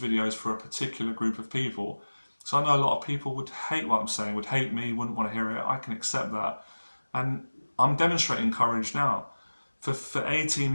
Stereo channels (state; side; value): inverted; both; correlation -1.00